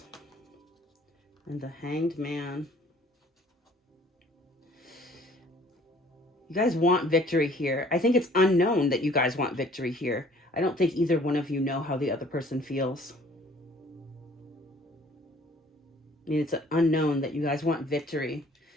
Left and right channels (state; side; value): normal; both; correlation 0.56